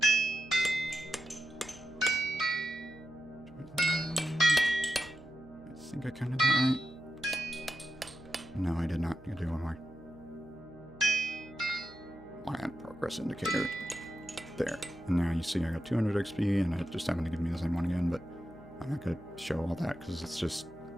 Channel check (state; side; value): noise; right; hum, 20 dB below the sound